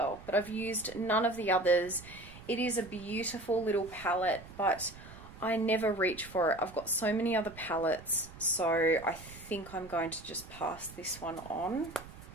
but I've used none of the others. It is a beautiful little palette, but I never reach for it. I've got so many other palettes, so I think I'm going to just pass this one on.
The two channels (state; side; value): noise; right; rumble, 17 dB below the sound